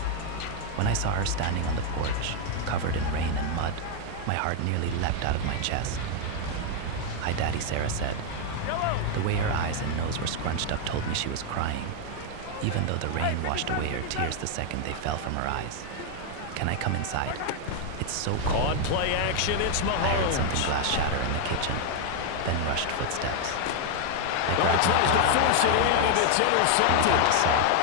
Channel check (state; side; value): different; both; correlation 0.00